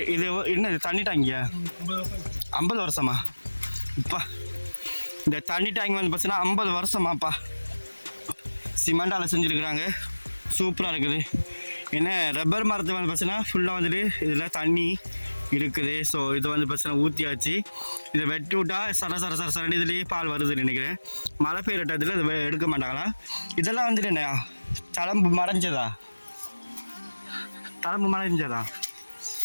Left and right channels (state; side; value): inverted; both; correlation -1.00